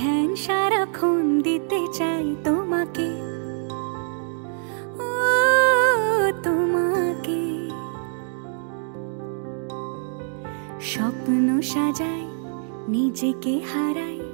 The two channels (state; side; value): silent; left; 62 dB below the other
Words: ধ্যান সারাক্ষণ দিতে চাই তোমাকে, ও তোমাকে। স্বপ্ন সাজাই, নিজেকে হারাই,